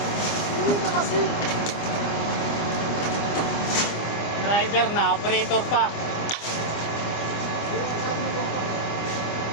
Driver na, operator pa.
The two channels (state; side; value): late; right; 25 ms